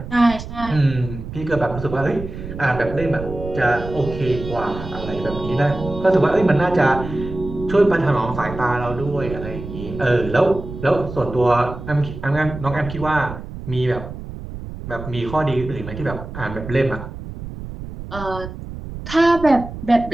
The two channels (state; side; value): noise; right; rumble, 10 dB below the sound